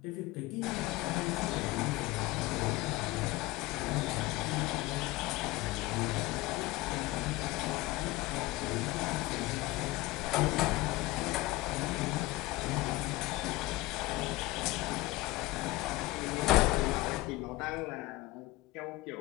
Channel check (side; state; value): right; quieter; 19.0 dB